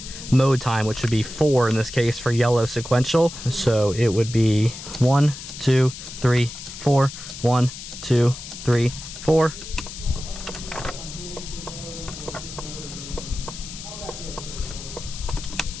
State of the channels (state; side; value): noise; left; hiss, 12 dB below the sound